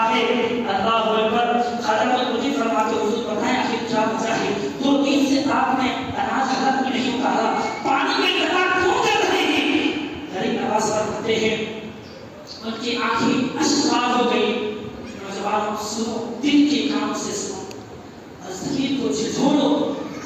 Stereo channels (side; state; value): both; identical; correlation 1.00